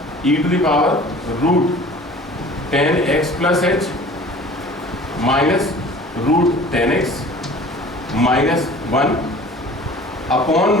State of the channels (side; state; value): both; normal; correlation 0.45